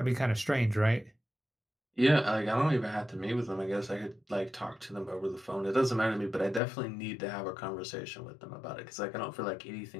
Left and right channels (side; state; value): right; drops out; at 6.6 s